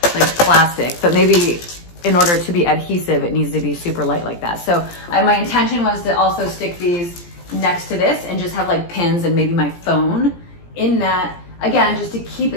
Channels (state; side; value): late; right; 17 ms